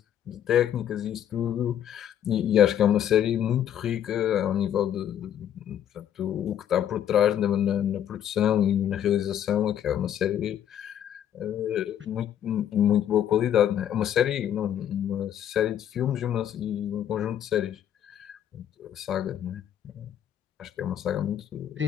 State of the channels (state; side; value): quieter; right; 10.1 dB